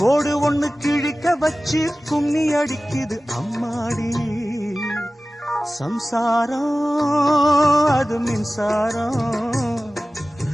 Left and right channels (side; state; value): both; normal; correlation 0.97